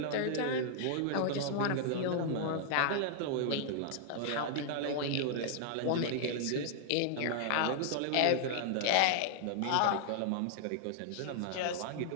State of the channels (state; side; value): different; both; correlation -0.01